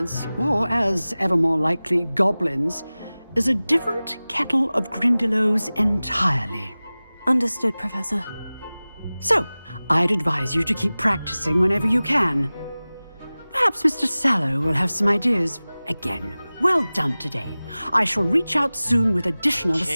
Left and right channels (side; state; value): both; inverted; correlation -0.98